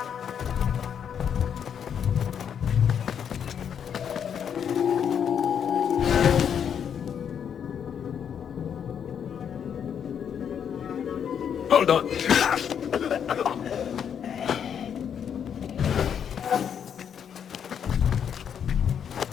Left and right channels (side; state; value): right; quieter; 8.1 dB